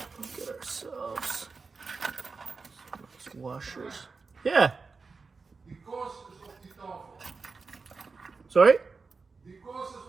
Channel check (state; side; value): quieter; left; 4.5 dB